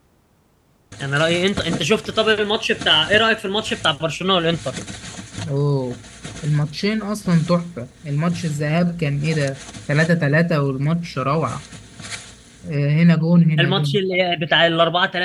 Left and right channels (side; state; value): both; identical; correlation 1.00